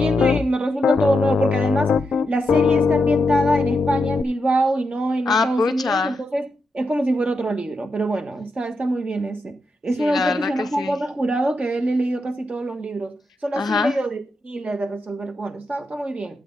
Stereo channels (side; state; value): both; normal; correlation 0.85